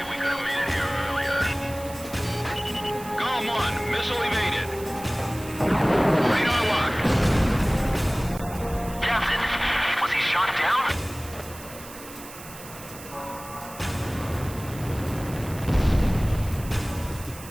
we could have made it here earlier. GOM 1, missile evaded. Radar lock. Captain, was he shot down?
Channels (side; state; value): right; noise; hiss, 16 dB below the sound